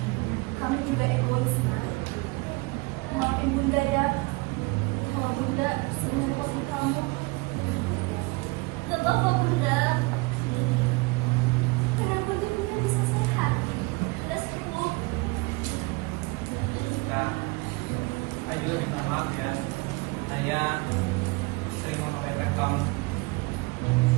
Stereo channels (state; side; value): quieter; left; 25.7 dB